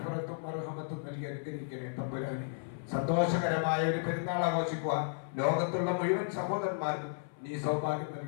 മർഹമത്തും നൽകി അനുഗ്രഹിക്കണേ തമ്പുരാനെ. സന്തോഷകരമായ ഒരു പെരുന്നാൾ ആഘോഷിക്കുവാൻ ലോകത്തുള്ള മുഴുവൻ സഹോദരന്മാർക്കും നീ സൗഭാഗ്യം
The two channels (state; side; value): silent; right; 55 dB below the other